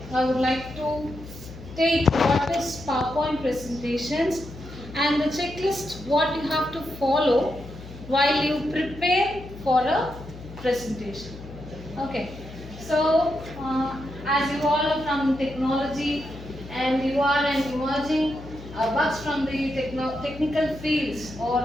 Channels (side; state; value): left; noise; hum, 14 dB below the sound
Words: I would like to take what is PowerPoint presentations and the checklist what you have to follow while you prepare for a presentation. Okay. So as you all are from technology and you are an emerging bugs from the technical fields